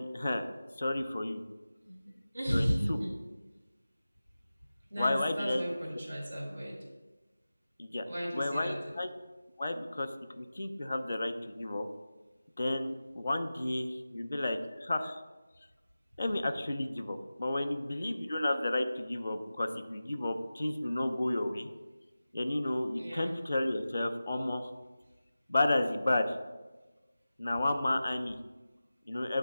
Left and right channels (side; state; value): both; inverted; correlation -0.95